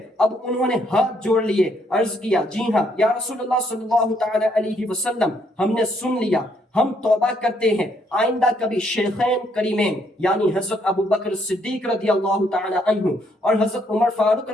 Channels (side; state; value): both; normal; correlation 0.71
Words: اب انہوں نے ہاتھ جوڑ لیے، عرض کیا جی ہاں یا رسول اللہ صلی اللہ تعالی علیہ وسلم، ہم نے سن لیا، ہم توبہ کرتے ہیں، آئندہ کبھی شیخین کریمین یعنی حضرت ابو بکر صدیق رضی اللہ تعالی عنہ اور حضرت عمر فاروق